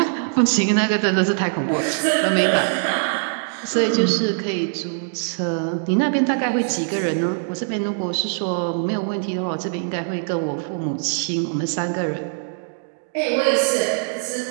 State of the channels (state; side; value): silent; left; digital silence